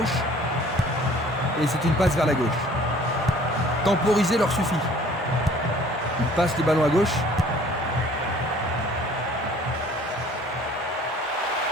Et c'est une passe vers la gauche. Temporiser leur suffit. Il passe le ballon à gauche.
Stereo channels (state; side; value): normal; both; correlation 0.52